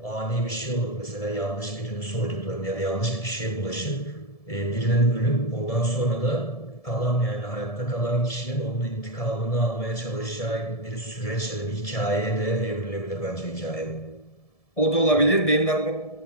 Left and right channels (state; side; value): late; right; 1.7 ms